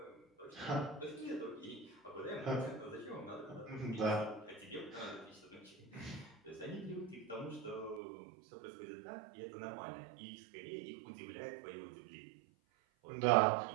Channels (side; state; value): left; drops out; at 8.0 s